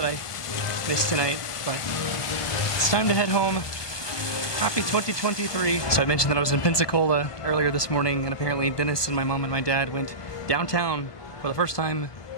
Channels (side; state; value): right; late; 1.3 ms